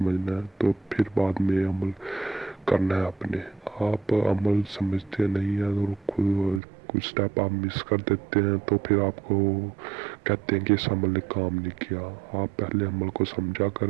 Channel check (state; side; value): drops out; left; at 6.6 s